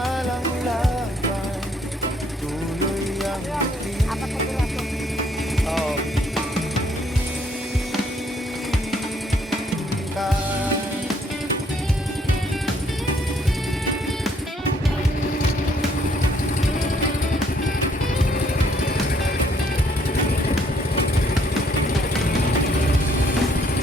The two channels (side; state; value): both; normal; correlation 0.66